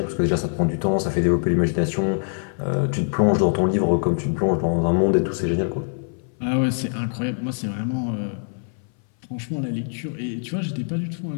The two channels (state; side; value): silent; right; 59 dB below the other